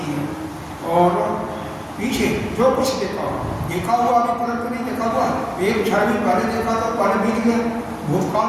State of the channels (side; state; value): both; identical; correlation 1.00